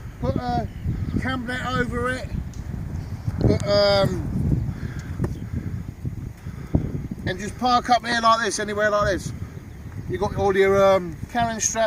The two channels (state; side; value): identical; both; correlation 1.00